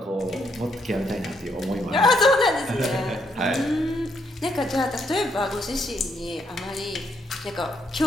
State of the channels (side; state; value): both; normal; correlation 0.74